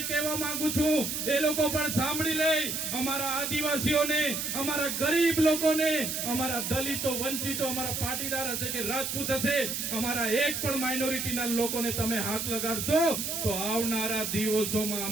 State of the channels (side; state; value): right; noise; hiss, 2 dB below the sound